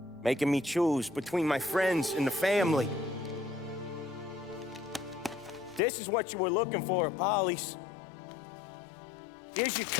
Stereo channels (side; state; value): right; drops out; at 5.8 s